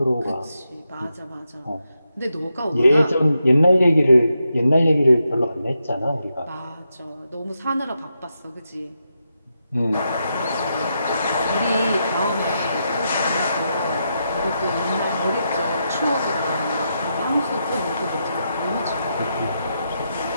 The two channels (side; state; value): both; inverted; correlation -0.84